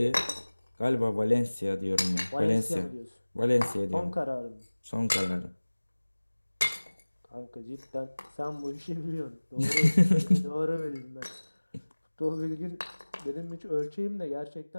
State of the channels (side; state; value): both; inverted; correlation -1.00